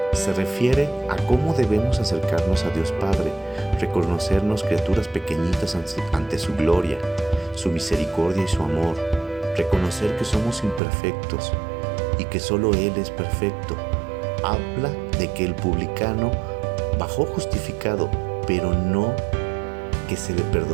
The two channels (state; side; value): drops out; left; at 10.8 s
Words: se refiere a cómo debemos acercarnos a Dios Padre, reconocernos criaturas pequeñitas ante su gloria, su misericordia y su amor, reconocer que somos imperfectos y que solo Él es perfecto. Habla de que el publicano bajó justificado, pero no que se le